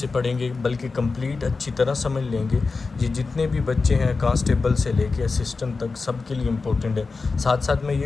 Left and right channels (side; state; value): right; quieter; 4.2 dB